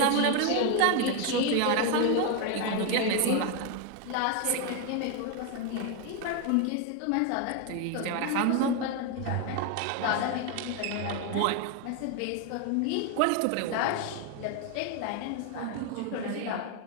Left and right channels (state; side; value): different; both; correlation 0.01